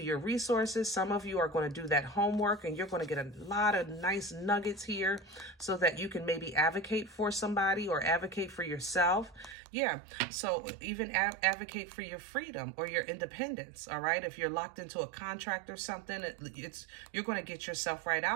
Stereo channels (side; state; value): left; drops out; at 9.6 s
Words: your resources. Some of you are going to do that homework, and you're going to get a lot of nice nuggets here so that you can maybe advocate for somebody or advocate for yourself. Yeah, so even advocate for your freedom or your independence, all right? If you're locked into a contract or something, you're going to get yourself right